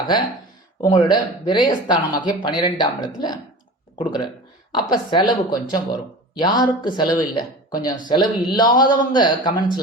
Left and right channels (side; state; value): both; normal; correlation 0.35